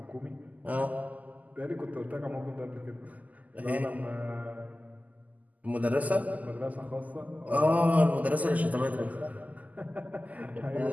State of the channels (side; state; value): left; late; 0.078 ms